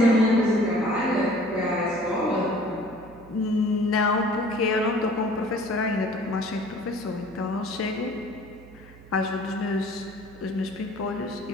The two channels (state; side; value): noise; right; hum, 21 dB below the sound